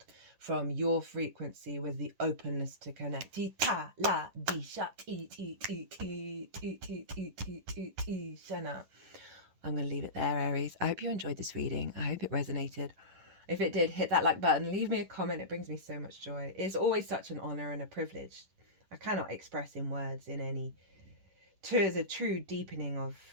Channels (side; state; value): left; late; 11 ms